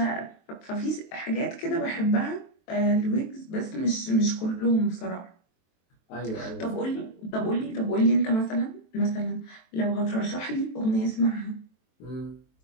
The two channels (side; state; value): right; late; 23 ms